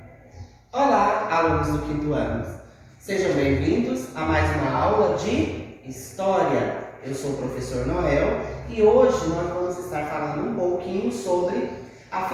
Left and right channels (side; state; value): both; identical; correlation 1.00